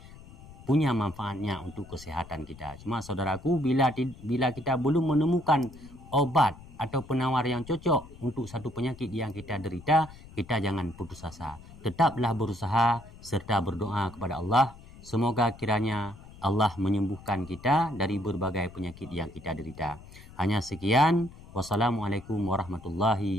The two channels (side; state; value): left; noise; rumble, 19 dB below the sound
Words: punya manfaatnya untuk kesehatan kita. Cuma saudaraku, bila kita belum menemukan obat atau penawar yang cocok untuk satu penyakit yang kita derita, kita jangan putus asa. Tetaplah berusaha serta berdoa kepada Allah. Semoga kiranya Allah menyembuhkan kita dari berbagai penyakit yang kita derita. Hanya sekian. Wassalamualaikum